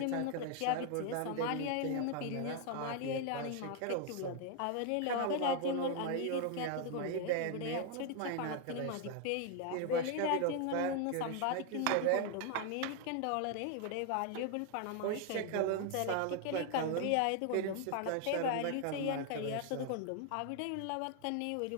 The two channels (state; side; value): different; both; correlation 0.00